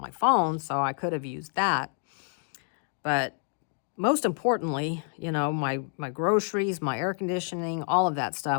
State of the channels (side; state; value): right; silent; 59 dB below the other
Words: my phone, so I could have used that. But most importantly, you know, my groceries, my air conditioning, all of that